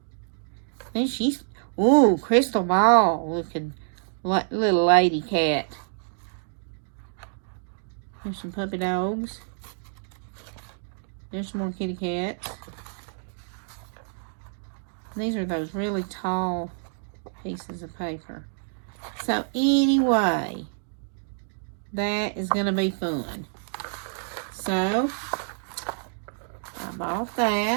And she's, ooh, crystal ball looking little lady cat. There's some puppy dogs. There's some more kitty cats. These are those really tall pieces of paper. So anyway, that is going to be fun. So, I bought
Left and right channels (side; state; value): left; silent; digital silence